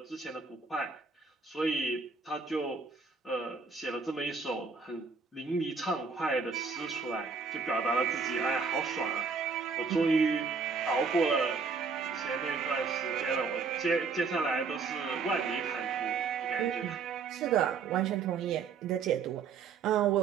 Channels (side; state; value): left; quieter; 5.1 dB